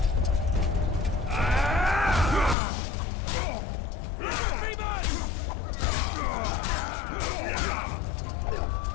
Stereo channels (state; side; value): drops out; right; at 2.6 s